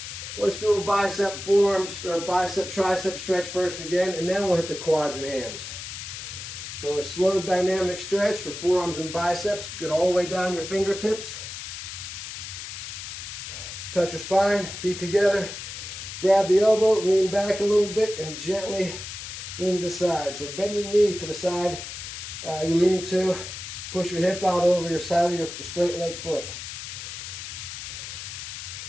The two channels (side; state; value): left; noise; hiss, 9 dB below the sound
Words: Let's do a bicep, forearms, or bicep, tricep stretch first again, and then we'll hit the quads and hams. So a slow dynamic stretch for forearms and biceps. Get all the way down your fingertips. Touch your spine, feet together. Grab the elbow, lean back a little bit, and gently lean to the side. So bend the knee to the side you're leaning to. Push your hip out over your side of your straight leg foot.